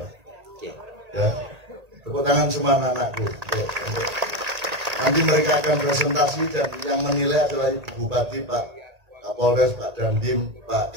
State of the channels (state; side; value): late; left; 1.8 ms